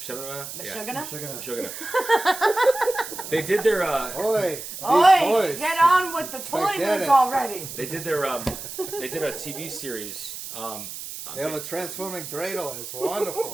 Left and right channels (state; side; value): noise; right; hiss, 10 dB below the sound